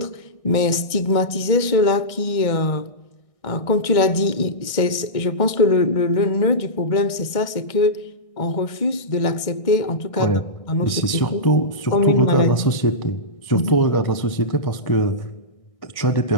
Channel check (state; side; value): late; right; 1.6 ms